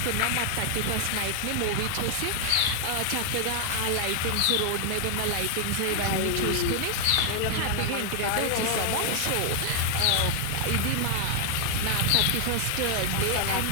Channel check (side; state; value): both; different; correlation 0.00